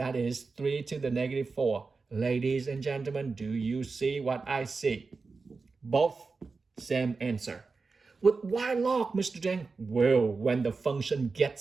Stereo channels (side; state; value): left; quieter; 4.3 dB